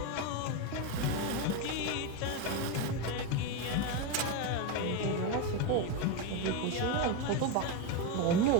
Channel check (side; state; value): both; different; correlation 0.04